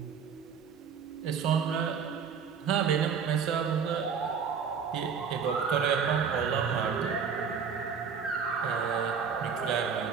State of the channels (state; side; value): quieter; left; 6.5 dB